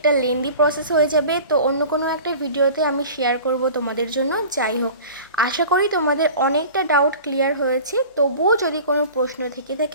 লেন্দি প্রসেস হয়ে যাবে, তো অন্য কোনো একটা ভিডিওতে আমি শেয়ার করব তোমাদের জন্য। যাই হোক, আশা করি তোমাদের অনেকটা ডাউট ক্লিয়ার হয়েছে। তবুও যদি কোনো প্রশ্ন থেকে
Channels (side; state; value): both; inverted; correlation -0.40